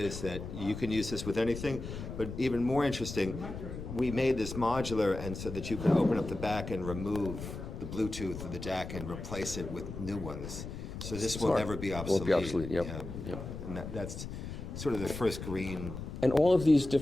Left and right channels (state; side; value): noise; left; rumble, 8 dB below the sound